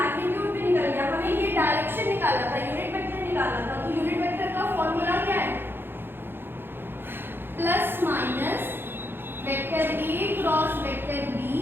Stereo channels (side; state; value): left; late; 0.10 ms